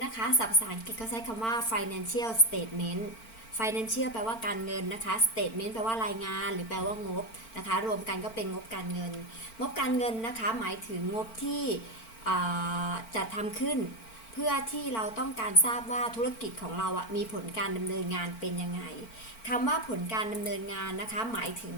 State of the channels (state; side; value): late; right; 4.4 ms